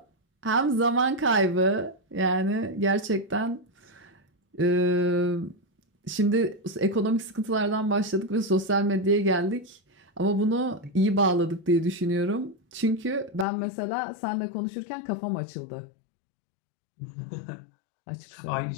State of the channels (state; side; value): drops out; right; at 13.5 s